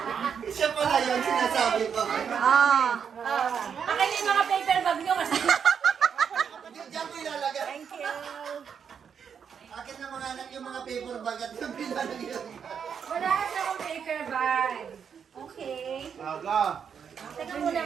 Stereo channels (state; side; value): quieter; left; 7.2 dB